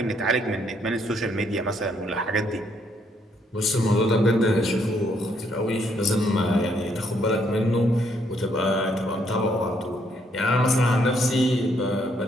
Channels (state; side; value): normal; both; correlation 0.71